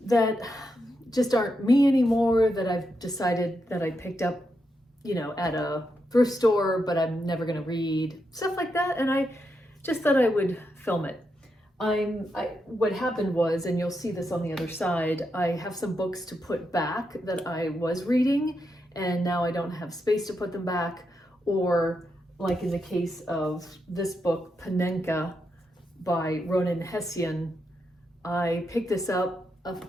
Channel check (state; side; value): normal; both; correlation 0.84